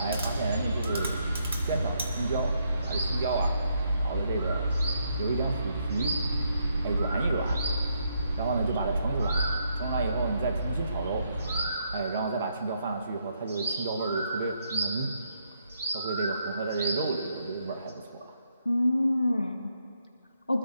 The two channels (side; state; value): both; inverted; correlation -0.76